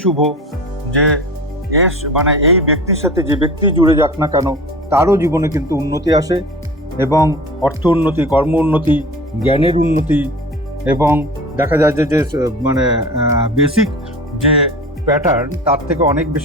শুভ যে এই ব্যক্তির সাথে যে ব্যক্তি জুড়ে যাক না কেন তারও জীবনে কিন্তু উন্নতি আসে, এবং অর্থ উন্নতি, কর্ম উন্নতি, জ্ঞানের উন্নতি, এবং দেখা যায় যে বেসিক যে প্যাটার্ন তার থেকে অনেক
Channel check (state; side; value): normal; both; correlation 0.36